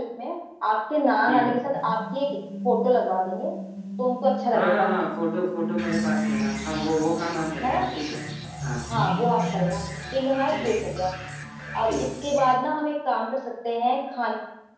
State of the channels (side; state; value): both; identical; correlation 1.00